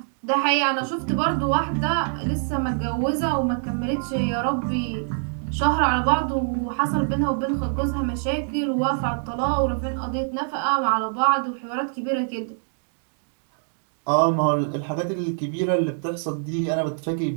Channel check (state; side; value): silent; left; digital silence